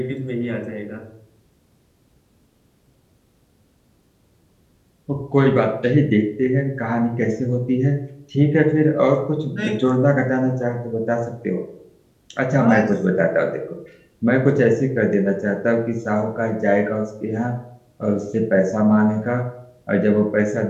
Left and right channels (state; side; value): identical; both; correlation 1.00